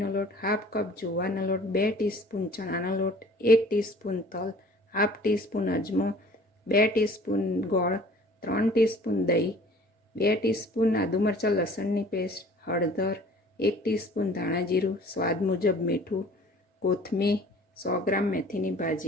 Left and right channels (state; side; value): normal; both; correlation 0.50